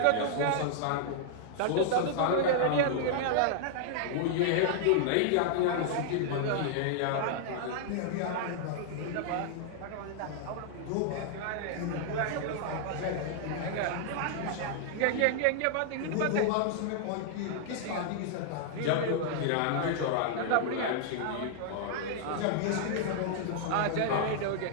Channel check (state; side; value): different; both; correlation -0.01